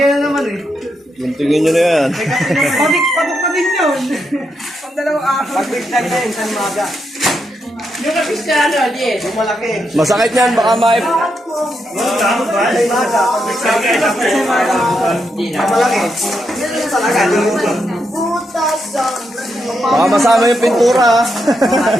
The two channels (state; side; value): normal; both; correlation 0.82